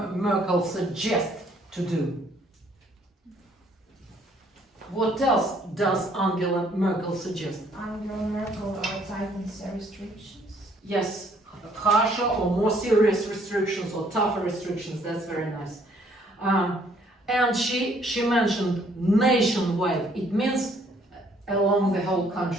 Merkel suggest to do? What else does Angela Merkel suggest? Angela Merkel tightens restrictions. Yes, harsher or more serious restrictions or tougher restrictions. That's very nice. And she mentioned nationwide. It means along the whole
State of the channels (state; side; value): normal; both; correlation 0.64